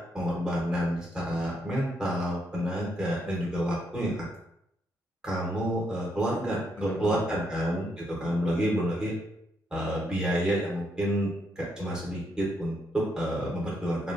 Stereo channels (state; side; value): normal; both; correlation 0.77